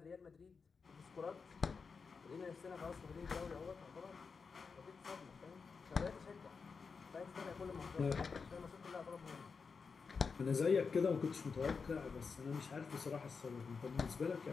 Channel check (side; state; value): right; quieter; 5.2 dB